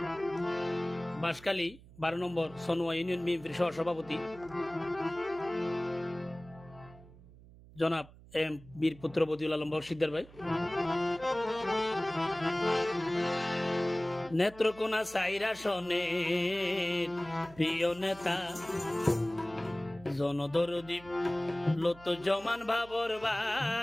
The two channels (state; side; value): noise; right; hum, 21 dB below the sound